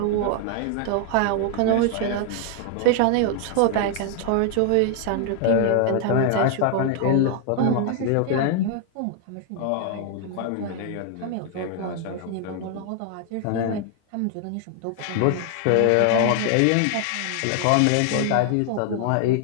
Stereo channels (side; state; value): both; different; correlation 0.00